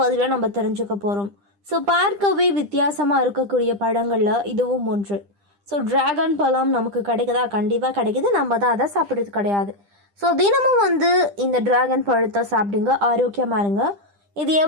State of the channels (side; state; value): left; late; 10 ms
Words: பதிவில் நம்ம தெரிஞ்சுக்க போகிறோம். ஸோ பார்க்கவே வித்தியாசமாக இருக்கக்கூடிய பழங்களில் இதுவும் ஒன்று. ஸோ டிராகன் பழம் நமக்கு கிடைக்குதா? கண்டிப்பாக கிடைக்குது. நம்ம தான் அதை சாப்பிட்றது கிடையாது. ஸோ தினமும் இந்த டிராகன் பழத்தை சாப்பிடுங்க, ஆரோக்கியமாக இருங்க. இது